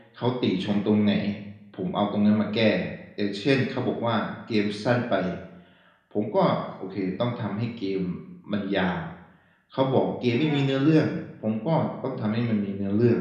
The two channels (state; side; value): identical; both; correlation 1.00